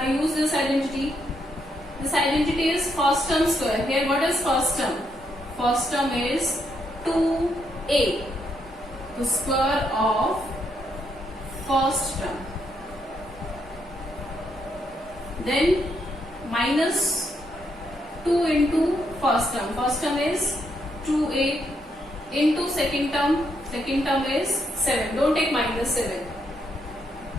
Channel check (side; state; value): both; normal; correlation 0.77